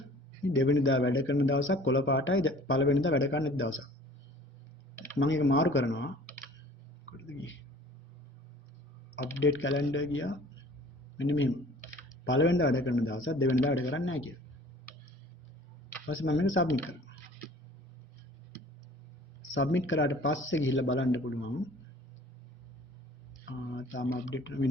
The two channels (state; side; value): normal; both; correlation 0.49